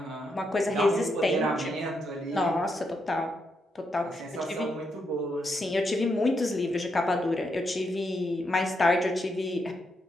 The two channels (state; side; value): normal; both; correlation 0.80